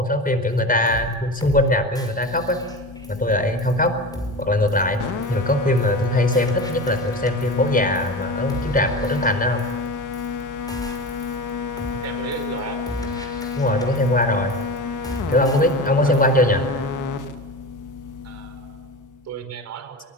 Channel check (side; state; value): both; normal; correlation 0.28